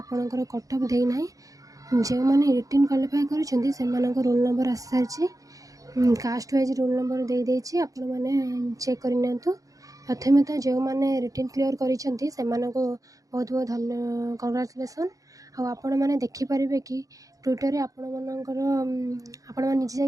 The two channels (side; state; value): left; late; 0.17 ms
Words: ଆପଣଙ୍କର କଟ୍ଅଫ୍ ଦେଇନାହିଁ। ଯେଉଁମାନେ ରିଟିନ୍ କ୍ୱାଲିଫାଏ କରିଛନ୍ତି ସେମାନଙ୍କ ରୋଲ୍ ନମ୍ବର ଆସିସାରିଛି। କାଷ୍ଟ ୱାଇଜ୍ ରୋଲ୍ ନମ୍ବର ଦେଇଦେଇଛି, ଆପଣମାନେ ଚେକ୍ କରିନିଅନ୍ତୁ। ପ୍ରଥମେ ତ ଯେଉଁମାନେ ରିଟିନ୍ କ୍ଲିୟର୍ କରିଛନ୍ତି ସେମାନଙ୍କୁ ବହୁତ ବହୁତ କଂଗ୍ରାଚୁଲେସନ୍। ଆଉ ଆପଣମାନେ ଦେଖିପାରିବେ କି ଟ୍ୱିଟର୍ରେ ଆପଣମାନେ ନିଜେ